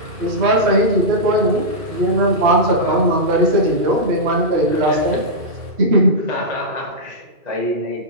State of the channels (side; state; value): left; late; 2.4 ms